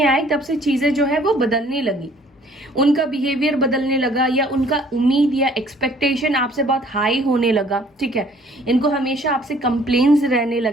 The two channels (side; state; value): both; normal; correlation 0.57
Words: आए तब से चीजें जो है वो बदलने लगी, उनका बिहेवियर बदलने लगा, या उनका उम्मीद या एक्सपेक्टेशन आपसे बहुत हाई होने लगा, ठीक है। इनको हमेशा आपसे कंप्लेन्स रहने